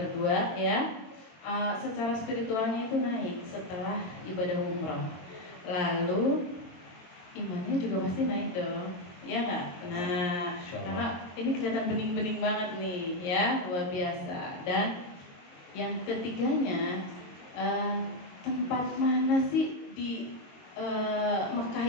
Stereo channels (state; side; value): late; right; 23 ms